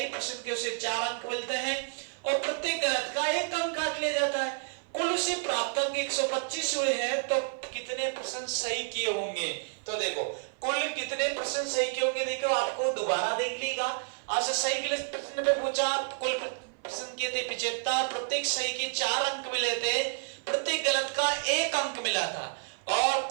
प्रश्न के उसे 4 अंक मिलते हैं और प्रत्येक गलत का 1 अंक काट लिया जाता है। कुल उसे प्राप्त अंक 125 हुए हैं, तो कितने प्रश्न सही किए होंगे? तो देखो कुल कितने प्रश्न सही किए होंगे, देखो आपको दोबारा देख लीजिएगा। आपसे सही के लिए प्रश्न पे पूछा, कुल प्रश्न किए थे 75, प्रत्येक सही के 4 अंक मिले थे, प्रत्येक गलत का 1 अंक मिला था और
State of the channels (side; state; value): left; silent; 55 dB below the other